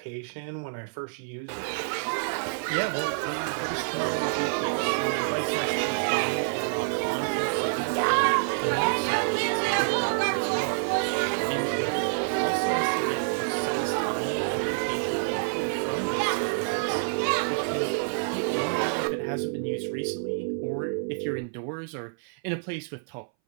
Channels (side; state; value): left; silent; 60 dB below the other